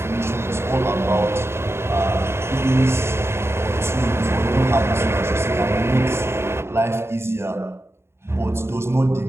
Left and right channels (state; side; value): late; left; 0.12 ms